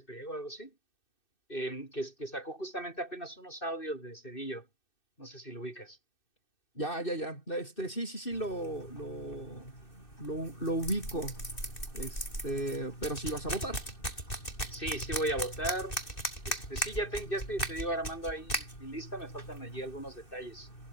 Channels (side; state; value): right; late; 2.6 ms